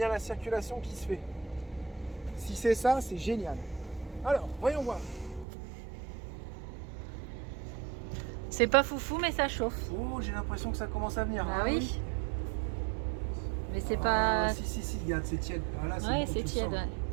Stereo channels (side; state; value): left; drops out; at 5.5 s